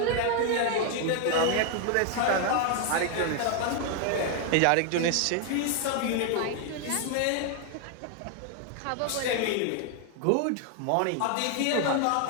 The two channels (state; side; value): different; both; correlation 0.00